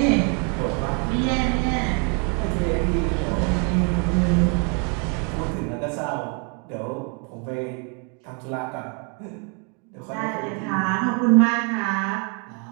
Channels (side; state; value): left; quieter; 36.8 dB